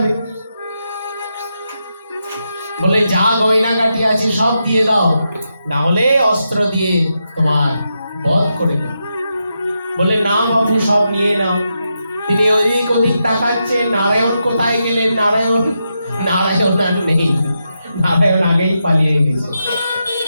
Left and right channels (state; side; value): inverted; both; correlation -0.85